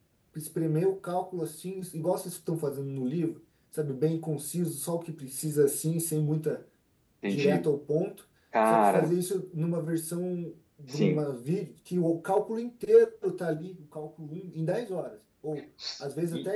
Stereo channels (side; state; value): both; identical; correlation 1.00